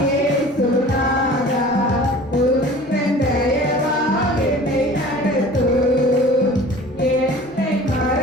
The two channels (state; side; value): normal; both; correlation 0.43